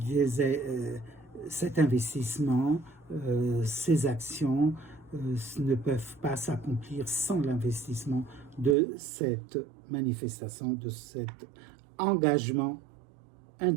investissement, ces actions ne peuvent pas s'accomplir sans l'investissement de cette manifestation, de cet engagement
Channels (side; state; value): left; drops out; at 8.8 s